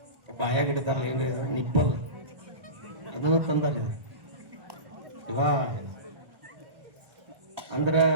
ಬಾಯಾಗಿಡ್ತಾರಲ್ಲ, ಹೆಂಗೆ ನಿಪ್ಪಲ್ ಅದನ್ನು ತಂದಾರೆ. ಇವಾ ಅಂದ್ರ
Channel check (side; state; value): left; late; 1.3 ms